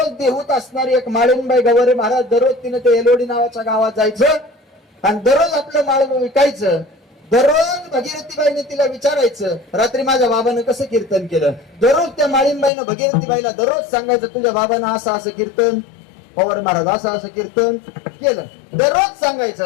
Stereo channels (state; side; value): drops out; right; at 12.7 s